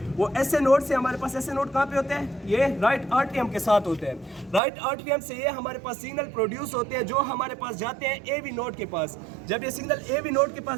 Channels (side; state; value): left; drops out; at 4.6 s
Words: वो एसए नोड से हमारे पास एसए नोड कहाँ पे होते हैं? ये राइट आर्टियम के साथ होते हैं। राइट आर्टियम से ये हमारे पास सिग्नल प्रोड्यूस होते हैं जो हमारे पास जाते हैं एवी नोड के पास। जब ये सिग्नल एवी नोड के